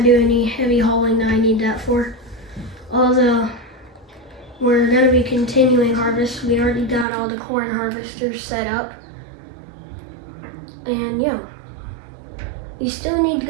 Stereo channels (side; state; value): left; drops out; at 7.1 s